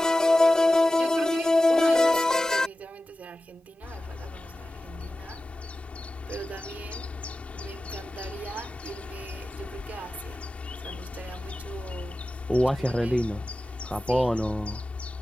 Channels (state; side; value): normal; both; correlation 0.94